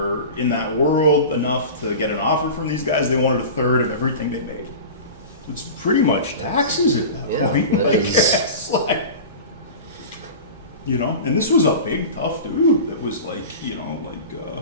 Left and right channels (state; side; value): inverted; both; correlation -0.33